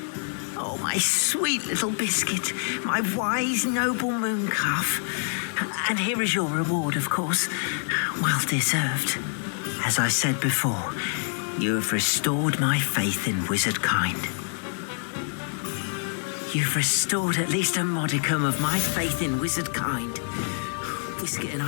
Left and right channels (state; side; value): silent; right; 59 dB below the other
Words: Oh, my sweet little Biscuit, my wise, noble moon calf. And here is your reward, of course. Well deserved. As I said before, you have restored my faith in wizard kind. You've restored at least a modicum of my faith in wizard kind. Biscuit and